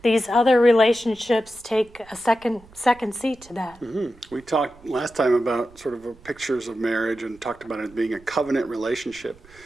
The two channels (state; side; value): noise; right; rumble, 25 dB below the sound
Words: these other relationships take a second seat to that. We talked last time about sort of pictures of marriage and talked about it being a covenant relationship